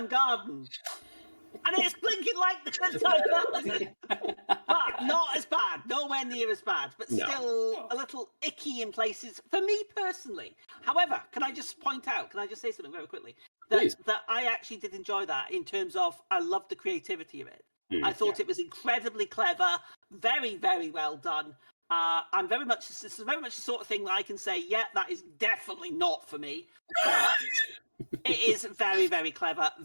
Garden." And it's blinking like the Good Time Garden, but not as bad, nowhere near as bad, but No. still a little icky in places for me personally. However, can I just say something very quickly? That I actually did enjoy that in terms of I loved the creativity of it. I thought it was incredibly clever, very, very well done. This is very much the sort of thing that I can say, yeah, that is definitely not for me. But it is very, very clever,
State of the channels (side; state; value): both; inverted; correlation -1.00